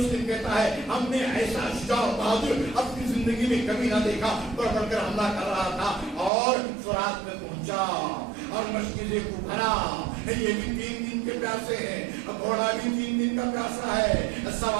کہتا ہے ہم نے ایسا شجاع بہادر اپنی زندگی میں کبھی نہ دیکھا، بڑھ بڑھ کر حملہ کر رہا تھا، اور فرات میں پہنچا اور مشکلیں کو بھرا۔ یہ بھی 3 دن کے پیاسے ہیں، گھوڑا بھی 3 دن کا پیاسا ہے،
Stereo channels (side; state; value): left; drops out; at 6.3 s